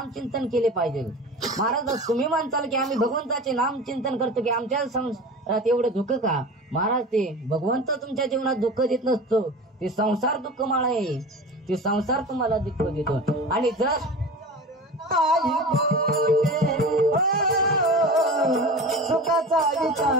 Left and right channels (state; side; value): normal; both; correlation 0.33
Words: चिंतन केले पाहिजे. महाराज तुम्ही म्हणताल की आम्ही भगवंताचे नाम चिंतन करतो की आमच्या संसारात एवढं दुःख का. महाराज ते भगवंत तुमच्या जीवनात दुःख देत नसतो, ते संसार दुःख माळ आहे. ते संसार तुम्हाला दुःख देतो. आणि जर सुखाचा विचार